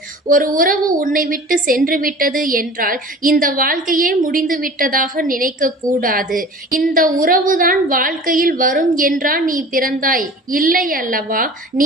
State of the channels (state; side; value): normal; both; correlation 0.42